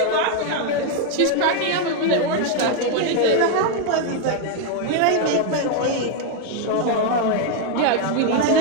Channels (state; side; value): different; both; correlation 0.01